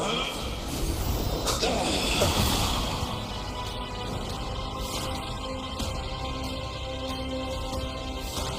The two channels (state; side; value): identical; both; correlation 1.00